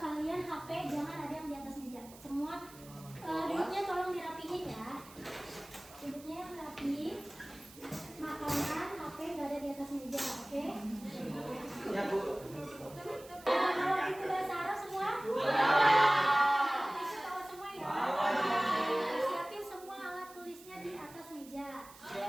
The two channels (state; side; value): noise; right; hiss, 20 dB below the sound